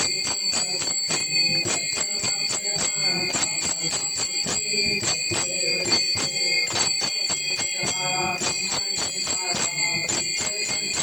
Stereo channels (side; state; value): left; noise; hiss, 22 dB below the sound